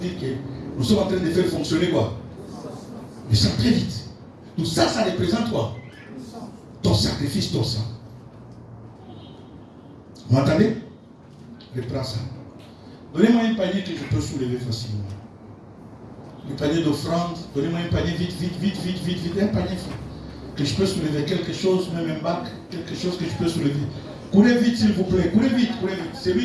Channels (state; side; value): identical; both; correlation 1.00